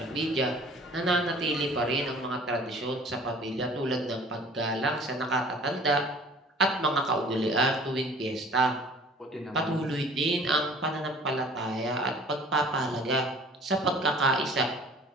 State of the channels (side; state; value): both; normal; correlation 0.49